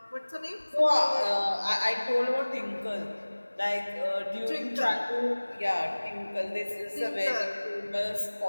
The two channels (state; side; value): inverted; both; correlation -1.00